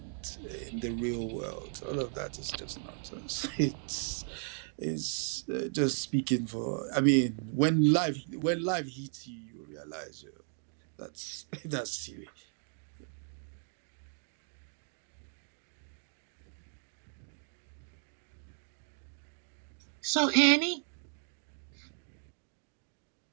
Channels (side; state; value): left; silent; 54 dB below the other